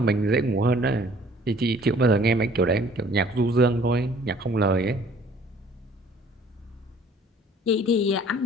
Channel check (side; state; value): both; normal; correlation 0.55